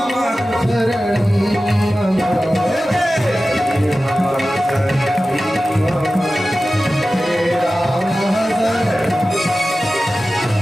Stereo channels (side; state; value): both; normal; correlation 0.95